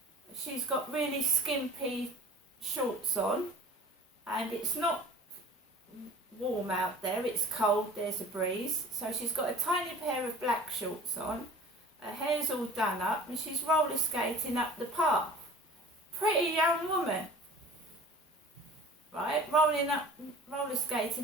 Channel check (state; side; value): normal; both; correlation 0.44